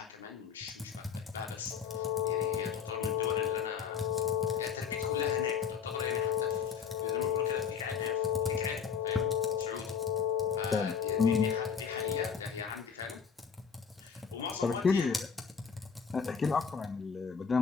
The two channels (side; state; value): right; quieter; 6.8 dB